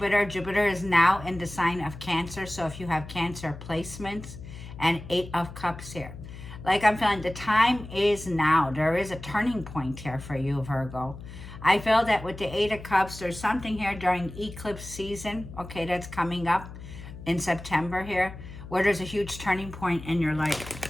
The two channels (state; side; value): noise; left; hum, 13 dB below the sound